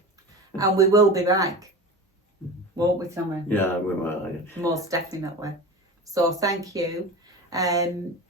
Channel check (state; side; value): normal; both; correlation 0.30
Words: And we will be back, won't we, Tommy? Yeah, we will. Most definitely. So thank you.